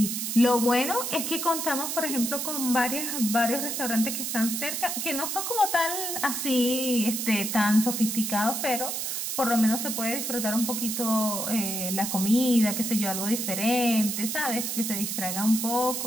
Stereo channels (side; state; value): right; noise; hiss, 2 dB below the sound